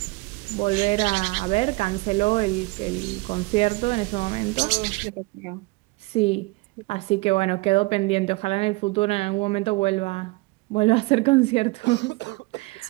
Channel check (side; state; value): left; quieter; 24.1 dB